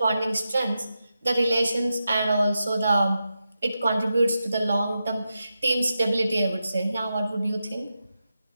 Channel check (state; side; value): inverted; both; correlation -0.89